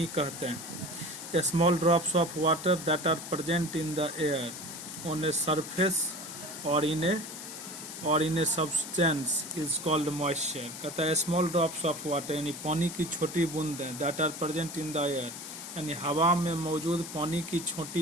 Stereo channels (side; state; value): left; noise; hiss, 10 dB below the sound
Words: कहते हैं। Small drops of water that are present in the air on a surface और in a substance is called moisture. कहता है स्मॉल ड्रॉप्स ऑफ वाटर यानी पानी की छोटी बूंदें, that are present in the air यानी हवा में मौजूद पानी की